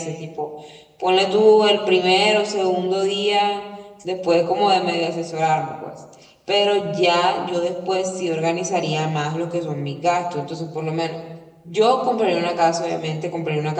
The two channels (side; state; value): both; identical; correlation 1.00